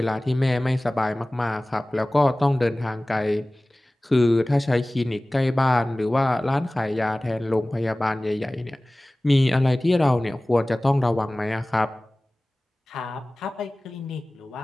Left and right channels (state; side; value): normal; both; correlation 0.98